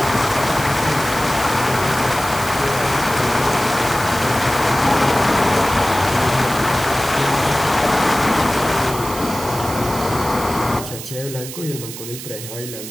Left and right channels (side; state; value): right; noise; hiss, 11 dB below the sound